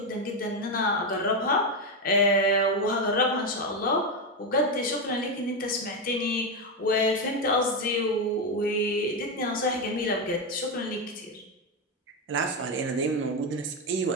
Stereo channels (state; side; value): normal; both; correlation 0.09